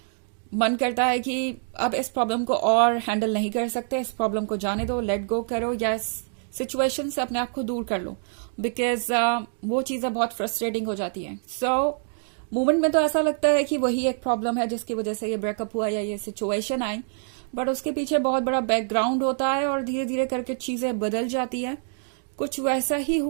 मन करता है कि अब इस प्रॉब्लम को और हैंडल नहीं कर सकते, इस प्रॉब्लम को जाने दो, लेट गो करो, या इस सिचुएशन से अपने आप को दूर कर लो। बिकॉज वो चीज़ें बहुत फ्रस्ट्रेटिंग हो जाती हैं। मोमेंट में तो ऐसा लगता है कि वही एक प्रॉब्लम है जिसकी वजह से ये ब्रेकअप हुआ या ये सिचुएशन आई, बट उसके पीछे बहुत बड़ा बैकग्राउंड होता है और धीरे धीरे करके चीज़ें बदल जाती है। कुछ वैसा ही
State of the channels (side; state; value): left; silent; digital silence